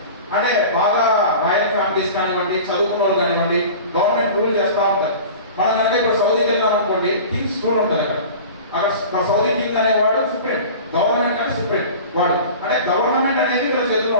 అంటే బాగా రాయల్ ఫ్యామిలీస్ కానివ్వండి, చదువుకున్న వాళ్ళు కానివ్వండి, గవర్నమెంట్ రూల్ చేస్తూ ఉంటారు. మనం కనుక ఇప్పుడు సౌదీకి వెళ్ళాం అనుకోండి, కింగ్స్ రూల్ ఉంటుంది అక్కడ సౌదీ కింగ్ అనేవాడు సుప్రీం, గవర్నమెంట్ అంటే సుప్రీం వాడు. అంటే గవర్నమెంట్ అనేది ఇక్కడ చేతుల్లో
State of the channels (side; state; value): both; inverted; correlation -0.37